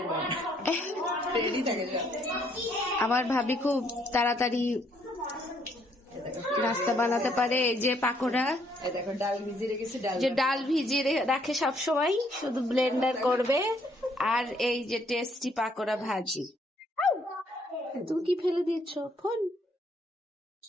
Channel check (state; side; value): normal; both; correlation 0.68